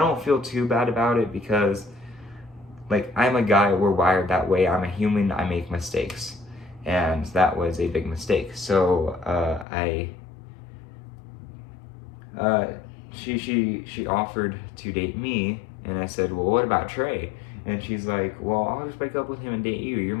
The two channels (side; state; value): right; drops out; at 9.7 s